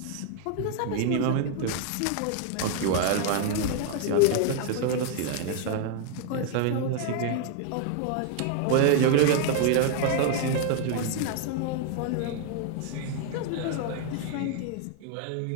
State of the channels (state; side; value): different; both; correlation 0.00